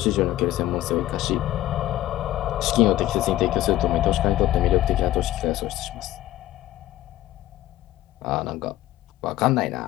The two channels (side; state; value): right; quieter; 14.6 dB